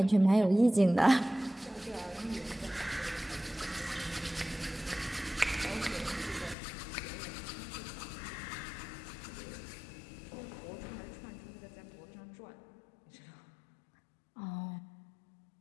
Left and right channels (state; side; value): drops out; right; at 6.6 s